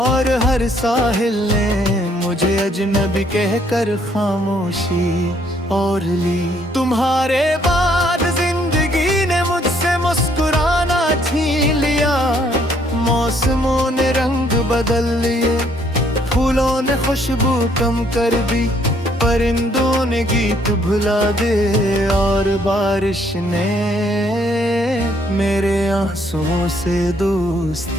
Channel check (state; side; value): normal; both; correlation 0.67